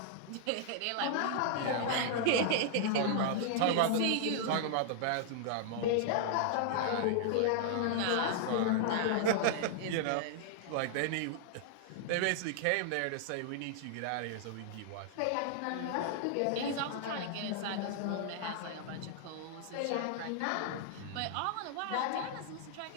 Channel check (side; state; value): both; different; correlation -0.01